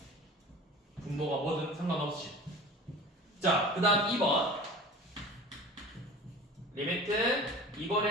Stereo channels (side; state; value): both; normal; correlation 0.39